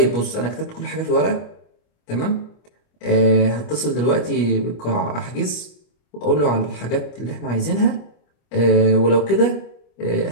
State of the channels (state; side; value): late; right; 25 ms